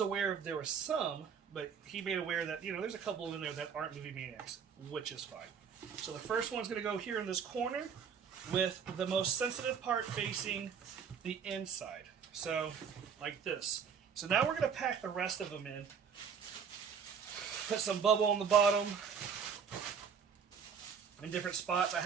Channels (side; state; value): left; quieter; 6.8 dB